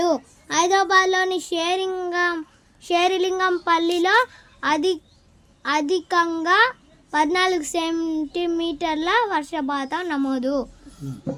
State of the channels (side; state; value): both; identical; correlation 1.00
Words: హైదరాబాద్లోని షేరిలింగంపల్లిలో అధికంగా 14 సెంటీమీటర్ల వర్షపాతం నమోదు.